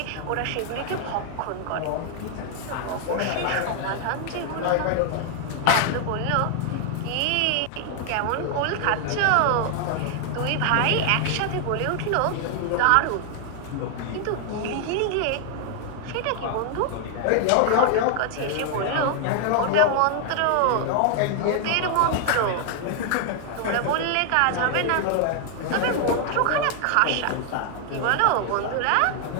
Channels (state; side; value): different; both; correlation 0.00